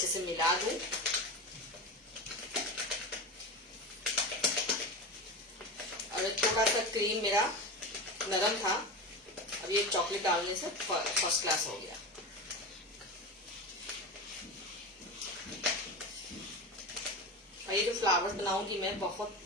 से मिला दूं। और थोड़ा सा क्रीम मेरा नरम था, अब ये चॉकलेट डालने से फर्स्ट क्लास हो गया। और ये जो फ्लावर्स बनाऊंगी मैं बहुत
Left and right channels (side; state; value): both; normal; correlation 0.24